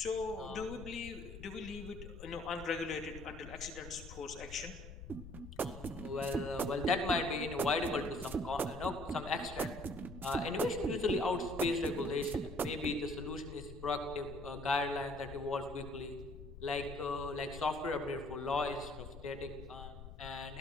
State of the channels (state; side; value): noise; left; rumble, 12 dB below the sound